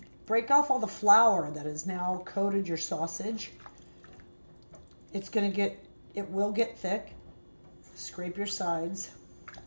Break off all the flour that has now coated your sausage. It's going to get, it will get thick. Scrape your sides.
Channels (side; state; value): both; inverted; correlation -1.00